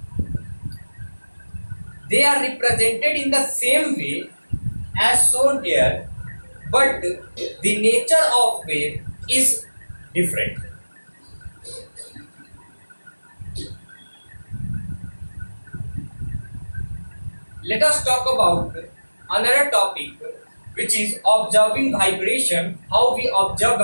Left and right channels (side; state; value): both; inverted; correlation -1.00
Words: They are represented in the same way as shown here, but the nature of wave is different. Let us talk about another topic, which is observing vibration, how we observe